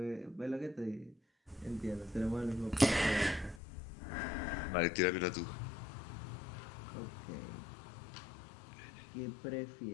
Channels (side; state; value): right; drops out; at 3.6 s